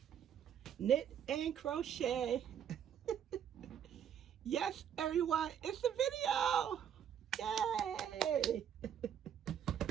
Knit and crochet. Yes, everyone, it's a video. Yay!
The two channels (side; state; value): left; quieter; 9.0 dB